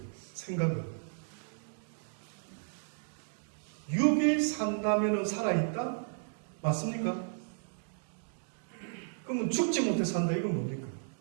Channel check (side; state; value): left; silent; digital silence